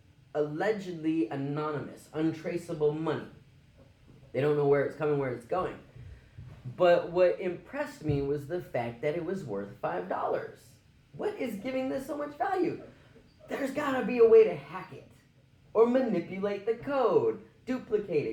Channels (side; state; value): both; identical; correlation 1.00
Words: allegedly anonymous, untraceable money. They don't know where it's coming, where it's going. But what impressed me was the fact that it was worth $5. What is giving this so much value? There's gotta be a way to hack it. Or manipulate the code, duplicate